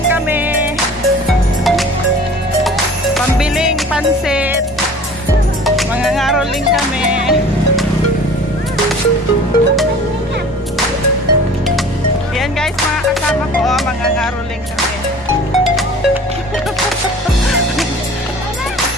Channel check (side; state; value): both; normal; correlation 0.45